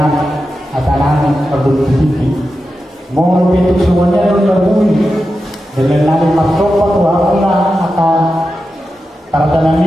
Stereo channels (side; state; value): both; normal; correlation 0.90